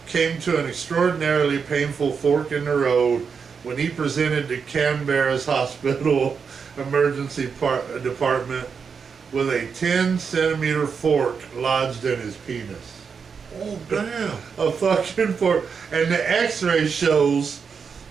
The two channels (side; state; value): left; quieter; 6.0 dB